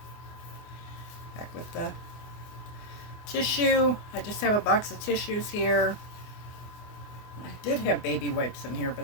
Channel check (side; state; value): right; late; 24 ms